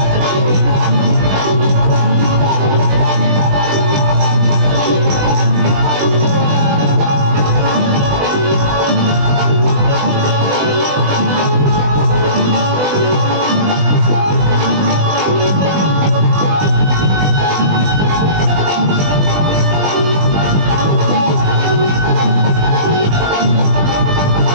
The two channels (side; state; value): left; late; 20 ms